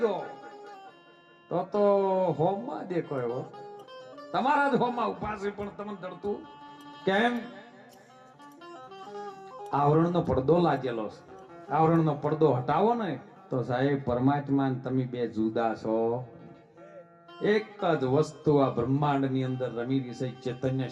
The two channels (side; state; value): both; identical; correlation 1.00